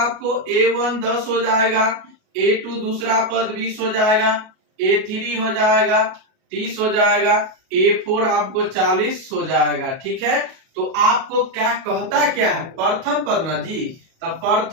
a1 10 हो जाएगा, a2 दूसरा पद 20 हो जाएगा, a3 हो जाएगा 30 हो जाएगा, a4 आपको 40 हो जाएगा, ठीक है। तो आपको क्या कहता क्या है, प्रथम पद ना जी। तो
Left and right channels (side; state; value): left; late; 37 ms